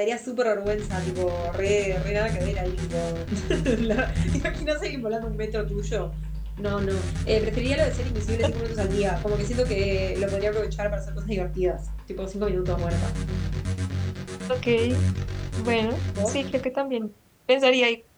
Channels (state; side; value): identical; both; correlation 1.00